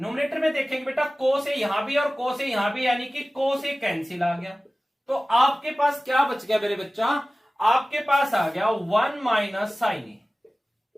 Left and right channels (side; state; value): both; normal; correlation 0.97